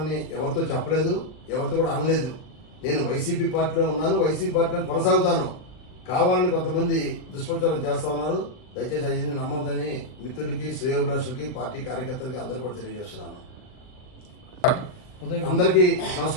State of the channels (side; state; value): right; late; 39 ms